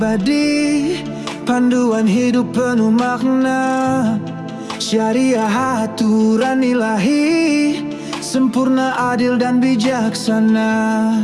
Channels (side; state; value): both; identical; correlation 1.00